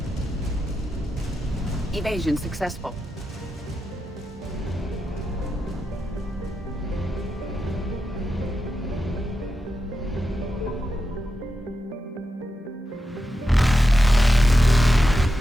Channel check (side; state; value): both; normal; correlation 0.88